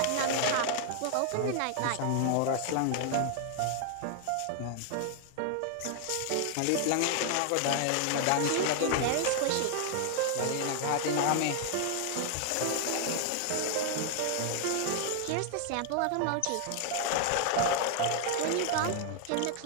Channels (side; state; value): both; different; correlation 0.00